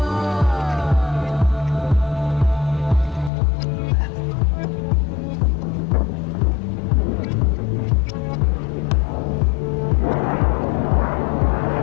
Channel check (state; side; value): drops out; right; at 3.3 s